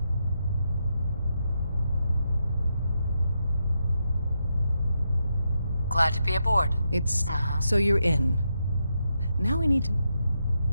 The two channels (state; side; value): inverted; both; correlation -0.83